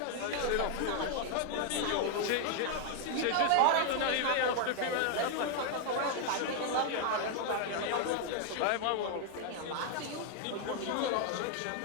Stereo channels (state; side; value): different; both; correlation 0.00